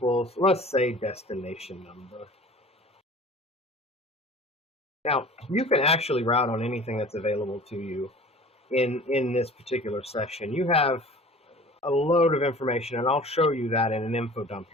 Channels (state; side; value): normal; both; correlation 0.43